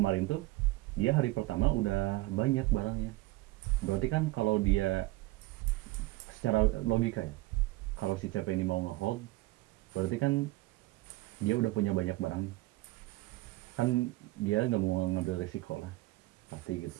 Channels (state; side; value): quieter; left; 19.4 dB